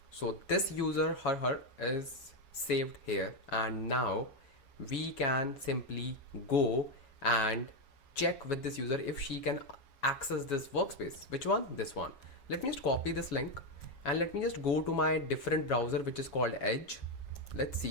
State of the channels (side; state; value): right; late; 7.2 ms